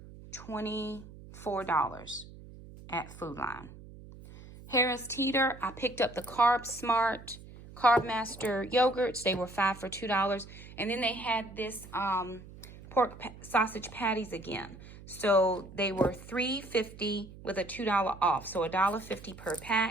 $24 at Food Line. Harris Teeter, I picked up the Carb Smart, Carb Master yogurts. They were 5 for $2. And then they had this pork sausage patties again. So they were $3.50 with a $2 off. So $1.50 per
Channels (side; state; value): right; noise; hum, 17 dB below the sound